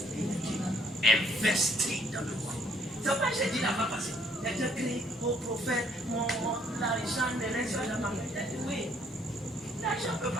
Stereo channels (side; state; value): both; normal; correlation 0.65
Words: in the kingdom. Investir dans le roi. C'est pas j'ai dit là-bas parce que j'ai créé au prophète, l'argent ne reste pas dans ma main. Oui, l'argent ne peut